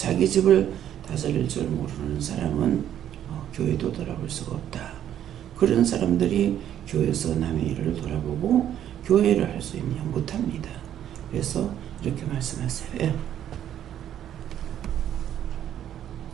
집을 다스릴 줄 모르는 사람은 교회도 돌아볼 수가 없다. 그런 사람들이 교회에서 남의 일을 돌아보고 교회를 할 수 있냐? 못합니다. 그래서 이렇게 말씀하세요. 예.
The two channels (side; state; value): left; quieter; 10.6 dB